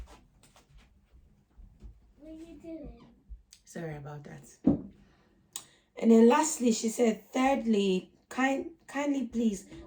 what are you doing? Sorry about that. And then lastly, she said, thirdly, kindly please,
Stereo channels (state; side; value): identical; both; correlation 1.00